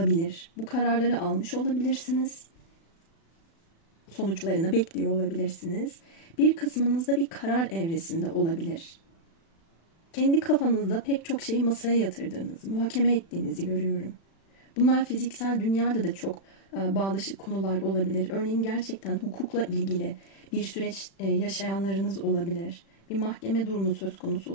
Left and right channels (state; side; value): late; right; 36 ms